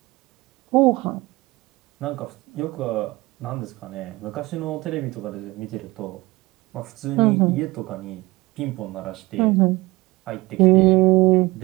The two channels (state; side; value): quieter; left; 21.3 dB